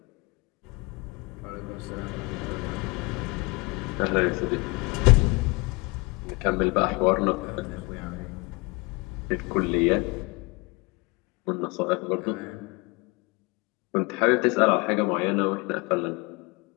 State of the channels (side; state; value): right; quieter; 25.9 dB